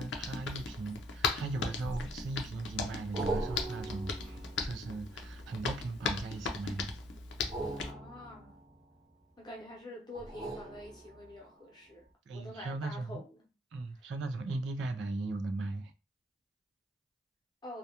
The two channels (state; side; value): normal; both; correlation 0.64